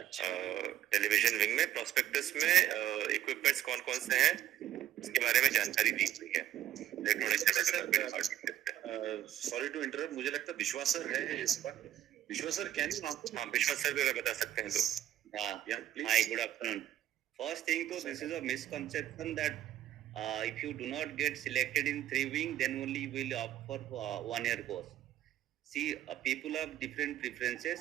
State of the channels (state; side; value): quieter; left; 12.0 dB